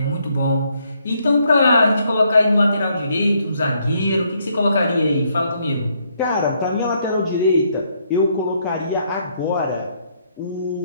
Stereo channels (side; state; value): both; inverted; correlation -0.72